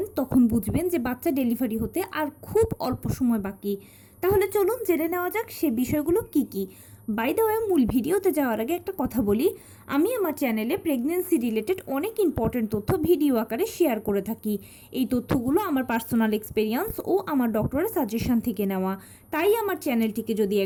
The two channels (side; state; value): both; identical; correlation 1.00